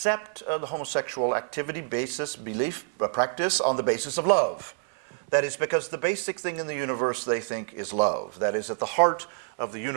the homosexual activity, basis, belief, practice on the basis of love. That is because the basic thing in the universe they think is love. That is, at the heart of the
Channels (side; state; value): left; silent; 57 dB below the other